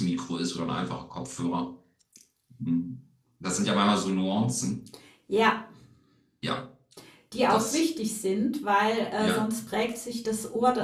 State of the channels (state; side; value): identical; both; correlation 1.00